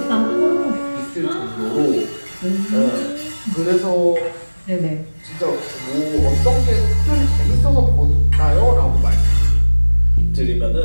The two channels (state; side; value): inverted; both; correlation -1.00